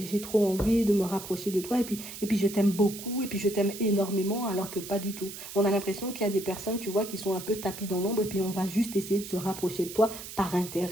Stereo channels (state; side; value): noise; right; hiss, 11 dB below the sound